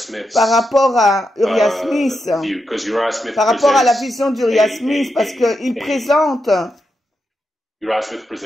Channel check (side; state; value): both; normal; correlation 0.86